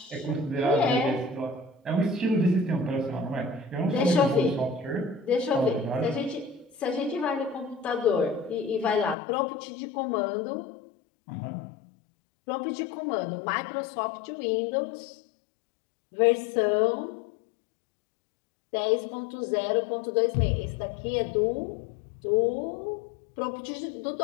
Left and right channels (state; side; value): drops out; right; at 9.2 s